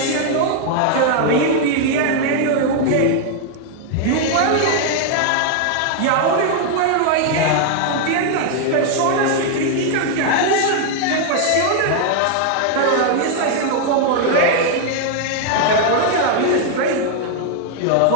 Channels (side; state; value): both; different; correlation 0.00